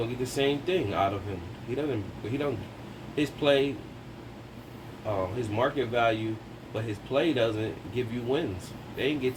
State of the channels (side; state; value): both; identical; correlation 1.00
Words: get the same thing out of him. He don't. His play, his market value, but his play doesn't give you wins. They didn't get